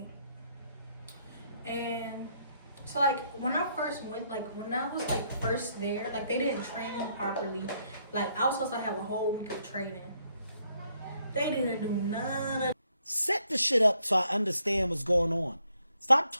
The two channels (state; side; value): inverted; both; correlation -0.73